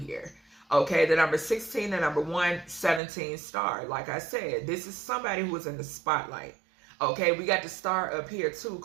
Okay, the number 16, the number 117 star. Like I said, this is somebody who is in the spotlight. Okay, we got the star up here too,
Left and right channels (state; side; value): drops out; left; at 3.0 s